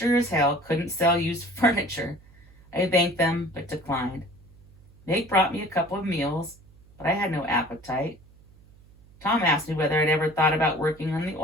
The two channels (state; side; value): noise; right; hum, 26 dB below the sound